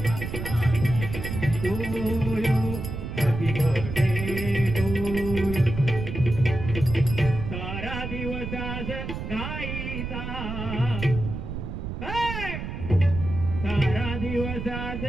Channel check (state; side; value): noise; right; rumble, 6 dB below the sound